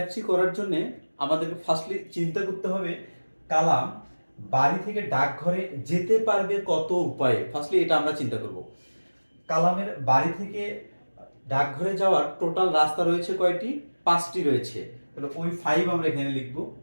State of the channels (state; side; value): inverted; both; correlation -1.00